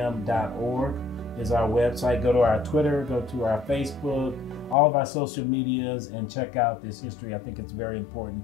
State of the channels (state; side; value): drops out; right; at 4.8 s